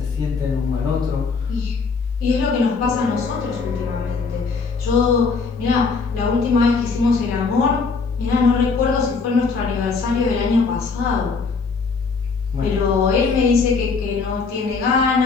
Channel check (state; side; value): quieter; right; 4.7 dB